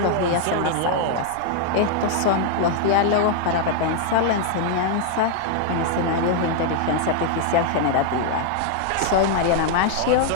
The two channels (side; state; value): both; different; correlation 0.00